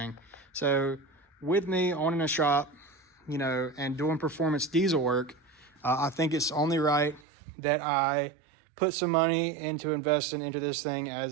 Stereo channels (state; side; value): drops out; left; at 7.2 s